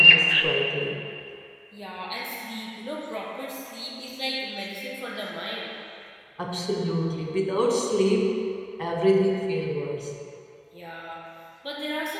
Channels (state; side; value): identical; both; correlation 1.00